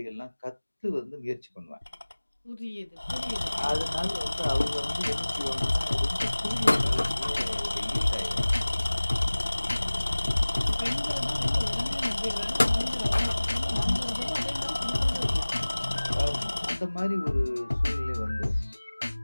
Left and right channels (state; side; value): inverted; both; correlation -1.00